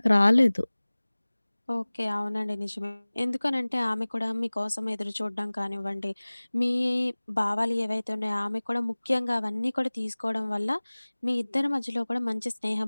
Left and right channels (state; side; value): inverted; both; correlation -1.00